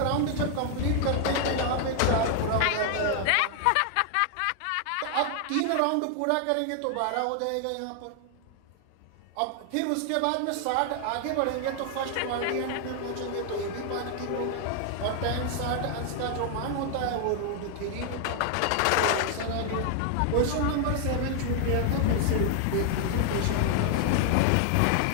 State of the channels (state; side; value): different; both; correlation 0.00